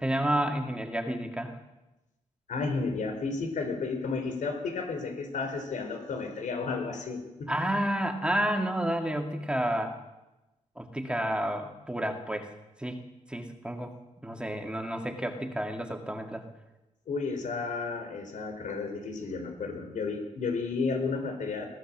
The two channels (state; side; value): normal; both; correlation 0.74